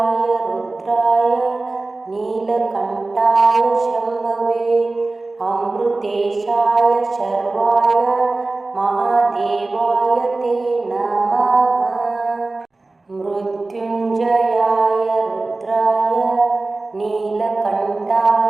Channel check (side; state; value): left; quieter; 3.3 dB